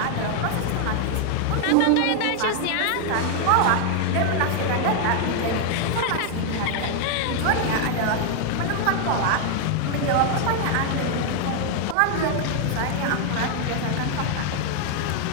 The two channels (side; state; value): both; different; correlation 0.00